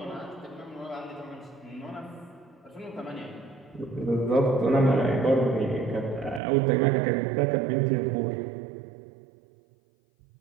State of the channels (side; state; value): left; drops out; at 6.4 s